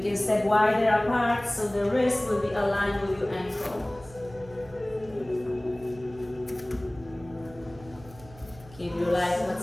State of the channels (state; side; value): noise; right; hum, 20 dB below the sound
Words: can step wider apart so the wrist will be aligned with your ankle. Keep your right foot